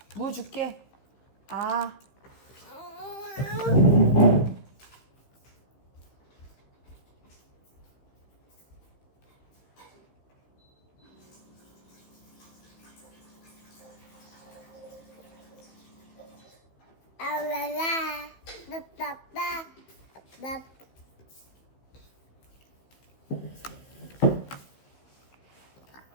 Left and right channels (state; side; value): late; right; 15 ms